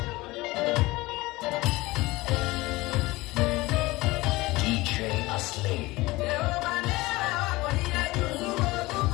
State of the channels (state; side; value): quieter; right; 20.6 dB